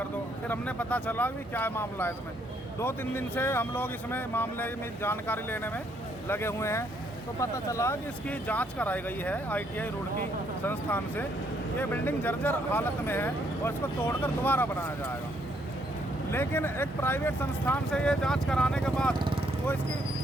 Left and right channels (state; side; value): normal; both; correlation 0.70